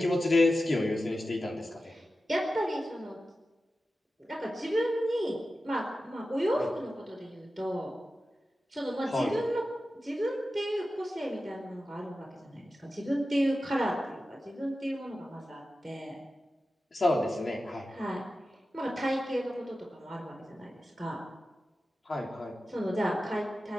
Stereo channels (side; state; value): both; normal; correlation 0.93